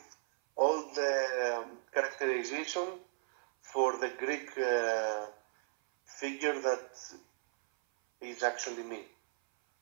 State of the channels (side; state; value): left; silent; 54 dB below the other